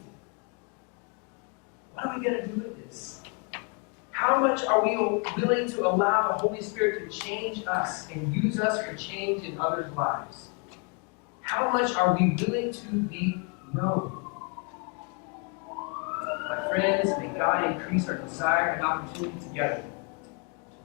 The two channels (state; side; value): quieter; right; 36.5 dB